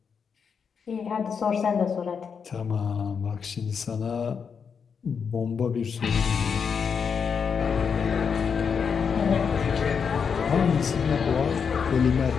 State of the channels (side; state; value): right; quieter; 6.4 dB